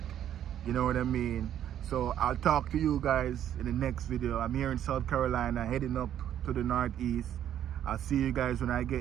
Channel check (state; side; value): quieter; left; 10.6 dB